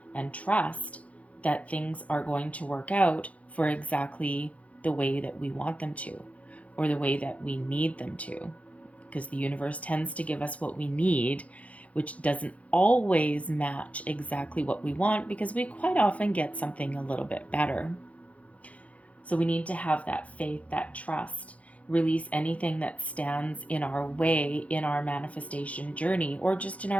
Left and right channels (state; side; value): late; right; 0.066 ms